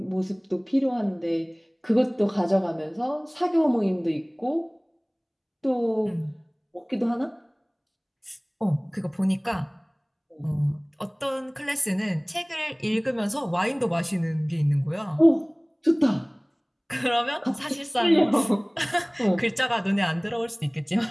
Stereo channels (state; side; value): identical; both; correlation 1.00